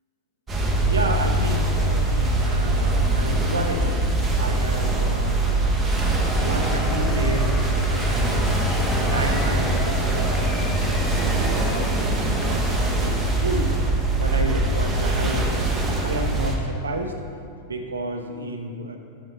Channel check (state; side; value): normal; both; correlation 0.27